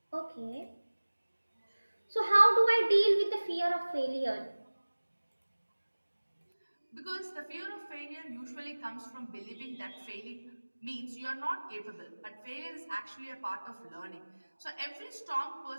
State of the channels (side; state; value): both; inverted; correlation -1.00